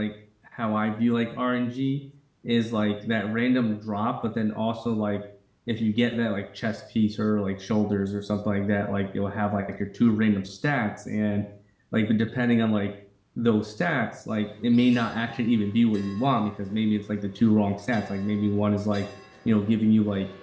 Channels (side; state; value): both; identical; correlation 1.00